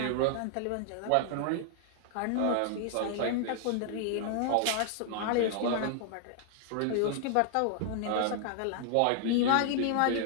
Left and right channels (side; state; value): both; different; correlation -0.01